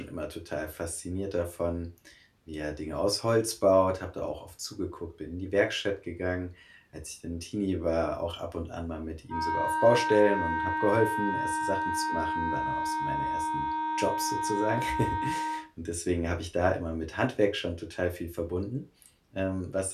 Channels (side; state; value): both; identical; correlation 1.00